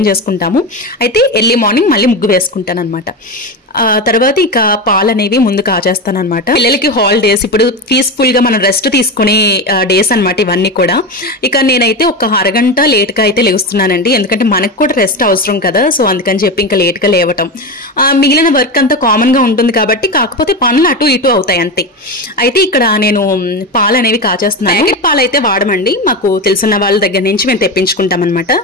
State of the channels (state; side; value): normal; both; correlation 0.19